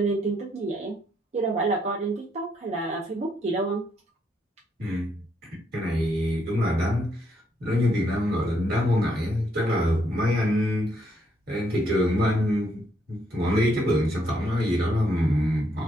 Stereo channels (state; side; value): normal; both; correlation 0.74